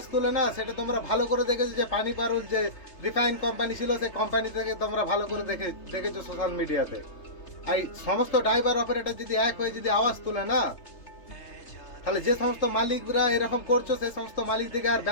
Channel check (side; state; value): right; late; 3.3 ms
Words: তোলে না, সেটা তোমরা ভালো করে দেখেছো যে পানি পারুল যে রিফাইন কোম্পানি ছিল, সেই কোম্পানি থেকে তোমরা ভালো করে দেখেছো সোশ্যাল মিডিয়াতে। এই সমস্ত ড্রাইভার অপারেটর যদি এক হয়ে যদি আওয়াজ তোলে না, তাহলে যে সমস্ত মালিকরা এরকম করছো সেই সমস্ত মালিকদেরকে আর